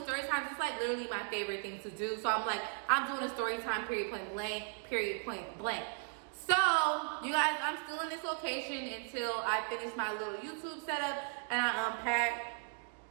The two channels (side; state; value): left; silent; 53 dB below the other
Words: story times. It's like literally my favorite thing to do. So I'm like, I'm doing a story time, period, point blank. So, you guys, I'm still in this location until I finish my little YouTube setup and I unpack.